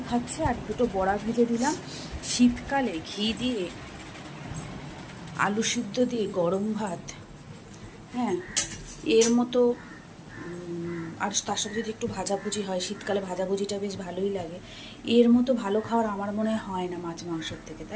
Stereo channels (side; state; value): both; identical; correlation 1.00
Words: খাচ্ছে, আর দুটো বড়া ভেজে দিলাম। শীতকালে ঘি দিয়ে আলু সিদ্ধ দিয়ে গরম ভাত, হ্যাঁ, এর মতো। আর তার সাথে যদি একটু ভাজাভুজি হয়, শীতকালে ভাজাভুজিটা বেশ ভালোই লাগে। এর মতো ভালো খাওয়ার আমার মনে হয় না মাছ মাংসর থেকে,